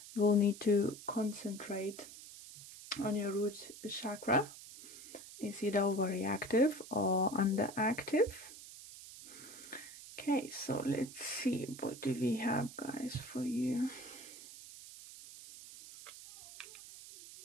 you will need to concentrate on your root chakra. Is either overreactive or underactive. Okay, so let's see, what do we have, guys, for you?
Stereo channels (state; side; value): noise; right; hiss, 15 dB below the sound